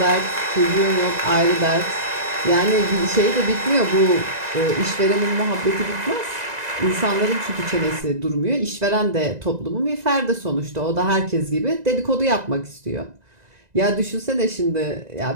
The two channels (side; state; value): left; late; 1.9 ms